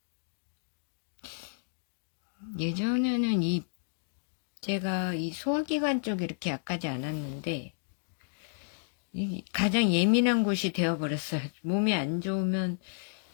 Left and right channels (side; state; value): right; silent; digital silence